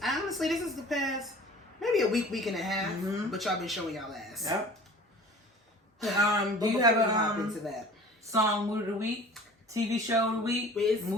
honestly, this is the past maybe a week and a half, but y'all been showing y'all ass. Yep. Do you have a into that song mood of the week, TV show of the week,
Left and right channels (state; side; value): normal; both; correlation 0.44